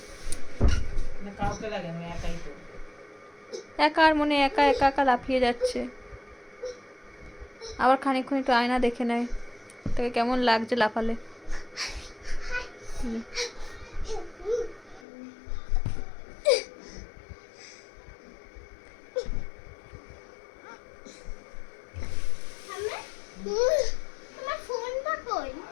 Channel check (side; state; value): right; drops out; at 15.1 s